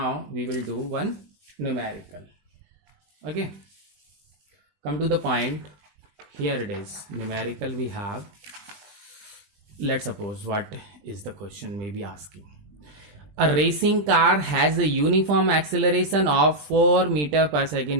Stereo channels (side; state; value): left; late; 20 ms